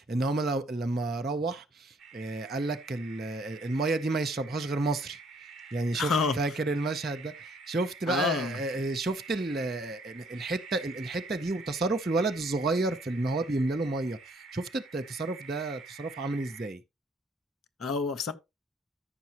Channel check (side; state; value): both; normal; correlation 0.63